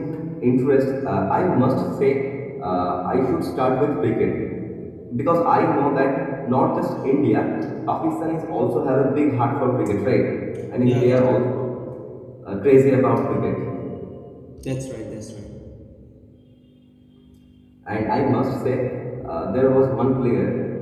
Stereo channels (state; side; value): identical; both; correlation 1.00